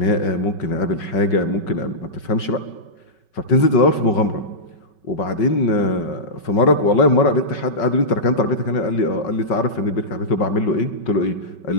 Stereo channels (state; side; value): late; right; 5.3 ms